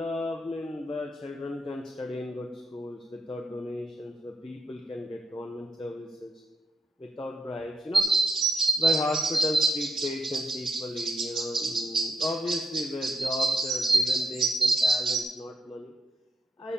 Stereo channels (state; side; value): normal; both; correlation 0.80